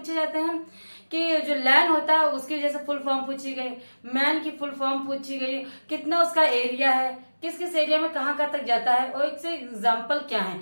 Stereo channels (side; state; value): both; inverted; correlation -1.00